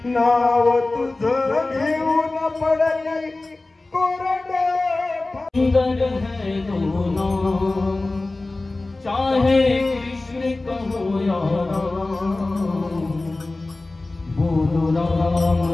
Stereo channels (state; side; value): quieter; right; 3.1 dB